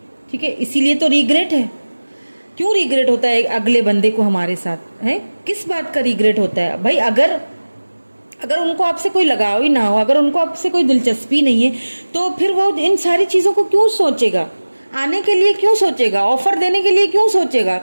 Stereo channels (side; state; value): both; inverted; correlation -1.00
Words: ठीक है, इसीलिए तो रिग्रेट है। क्यों रिग्रेट होता है अगले बंदे को हमारे साथ, है किस बात का रिग्रेट होता है भाई? अगर उनको आपसे कोई लगाव ही ना हो, अगर उनको आपसे कोई दिलचस्पी नहीं है, तो फिर वो इन सारी चीज़ों को क्यों सोचेगा? आने के लिए क्यों सोचेगा? ऑफर देने के लिए क्यों सोचेगा?